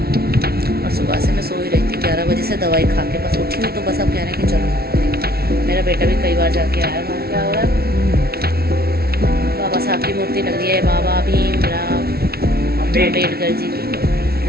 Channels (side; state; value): left; late; 0.45 ms